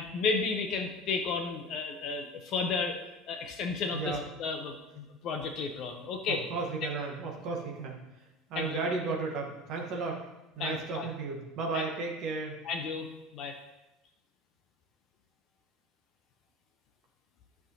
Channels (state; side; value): normal; both; correlation 0.34